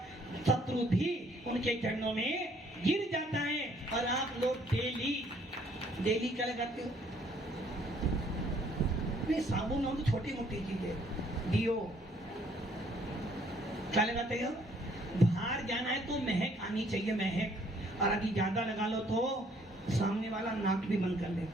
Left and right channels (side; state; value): both; normal; correlation 0.63